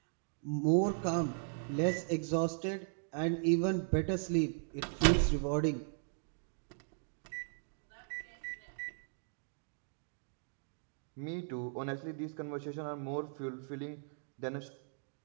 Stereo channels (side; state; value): left; silent; digital silence